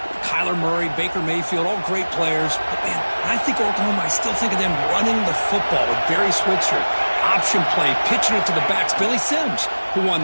Kyler Murray, Baker Mayfield, all great players. But, man, when I think Oklahoma, I still think of them running the football with Barry Switzer. Option play, pitching it to the backs. Billy Sims, who won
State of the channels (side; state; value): both; inverted; correlation -1.00